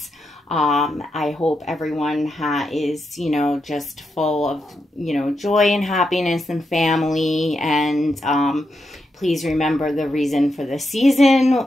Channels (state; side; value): normal; both; correlation 0.85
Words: I hope everyone is, you know, just full of, you know, joy and happiness and family. And please remember the reason for the season,